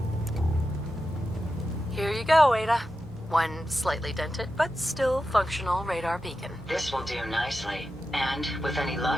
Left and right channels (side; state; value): both; normal; correlation 0.91